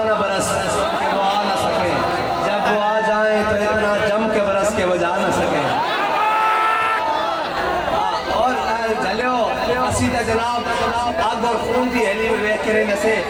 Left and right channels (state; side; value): identical; both; correlation 1.00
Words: نہ برس کہ وہ آ نہ سکے, جب وہ آ جائیں تو اتنا جم کے برس کے وہ جا نہ سکے. اور جلیو اسی تا جناب آگ اور خون دی ہیلی میں ویک کریں نسے